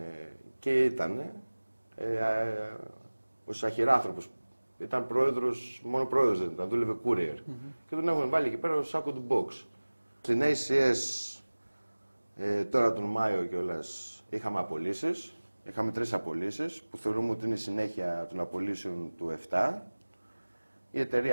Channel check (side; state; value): both; inverted; correlation -1.00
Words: ο Σαχυράνθρωπος. Ήταν πρόεδρος, μόνο πρόεδρος δεν ήταν, δούλευε courier. Και τον έχουν βάλει εκεί πέρα ως σάκο του box. Στην ACS τώρα τον Μάιο κιόλας είχαμε απολύσεις. Είχαμε 3 απολύσεις που θεωρούμε ότι είναι η συνέχεια των απολύσεων του 7. Η